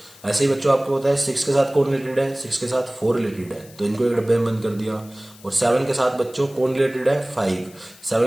ऐसे ही बच्चों आपको पता है 6 के साथ कौन रिलेटेड है, 6 के साथ 4 रिलेटेड है तो इनको एक डब्बे में बंद कर दिया। और 7 के साथ बच्चों कौन रिलेटेड है 5,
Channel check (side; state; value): left; noise; hiss, 23 dB below the sound